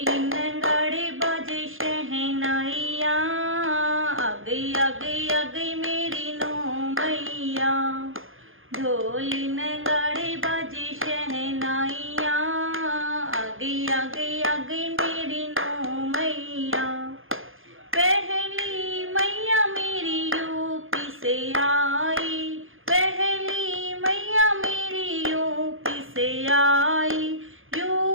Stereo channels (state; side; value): late; left; 0.59 ms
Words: नगाड़े बाजे शहनाइया, आ गई आ गई आ गई मेरी नौ मैया। ढोल नगाड़े बाजे शहनाइया, आ गई आ गई आ गई मेरी नौ मैया। पहली मैया मेरी यूपी से आई, पहली मैया मेरी यूपी से आई।